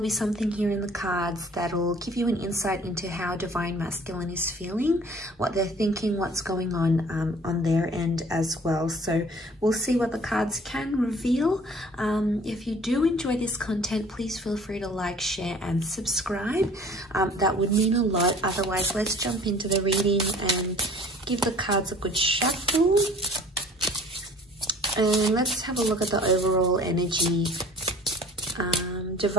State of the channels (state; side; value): normal; both; correlation 0.50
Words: something here in the cards that'll give you an insight into how Divine Masculine is feeling, what they're thinking, what's going on their end as well. So we'll see what the cards can reveal. If you do enjoy this content, please feel free to like, share and subscribe. That would mean a lot. Otherwise, let's jump into the reading and give the cards a good shuffle. And let's have a look at the overall energy.